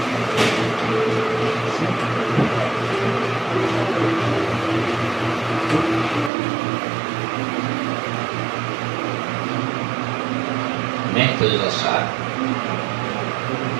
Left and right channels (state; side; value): drops out; left; at 6.3 s